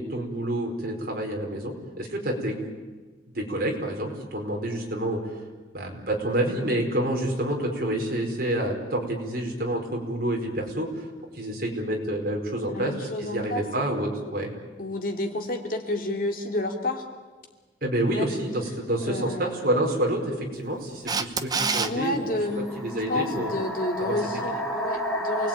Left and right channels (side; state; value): both; normal; correlation 0.28